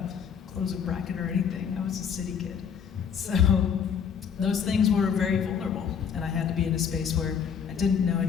close a bracket or anything. I was a city kid. So those things were very vulnerable. And I had to be in a space where I didn't know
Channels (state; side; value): quieter; right; 7.3 dB